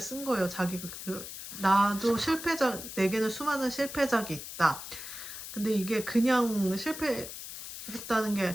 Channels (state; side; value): noise; left; hiss, 10 dB below the sound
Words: 쓴 거예요. 자기가 나도 실패작, 내게는 수많은 실패작이 있다. 근데 이게 그냥 실패했다는 게